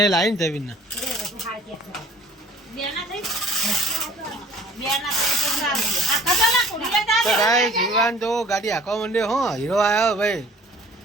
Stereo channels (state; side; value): normal; both; correlation 0.51